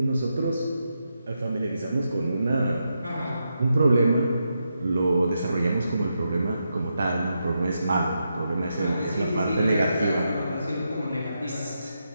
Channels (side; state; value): both; inverted; correlation -0.85